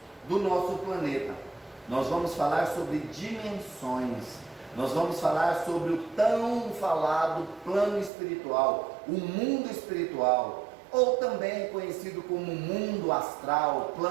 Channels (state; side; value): drops out; left; at 8.1 s